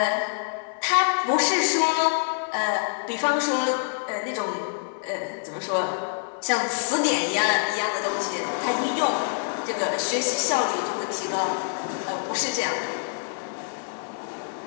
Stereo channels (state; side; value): silent; right; digital silence